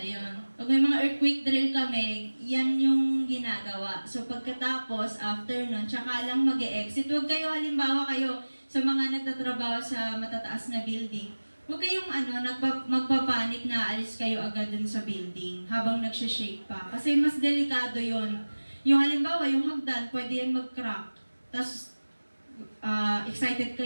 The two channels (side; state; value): both; inverted; correlation -1.00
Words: Pag may mga earthquake drill kami, yan yung ginagawa. So, pagkatapos, after nun, tsaka lang mag-e-exit. Huwag kayo, halimbawa kayo, sa mga nagtatrabaho sa matataas na building, huwag kayong magpapanik na alis kayo agad dun sa building habang nagsishake pa. Kasi mas delikado yon. Yung halimbawa, yung hagdan, pwede yan mag-crack. Tapos, excited